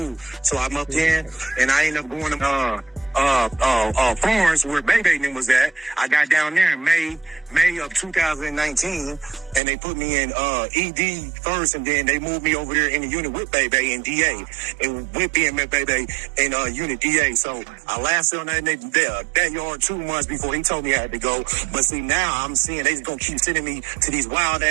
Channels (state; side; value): drops out; left; at 9.6 s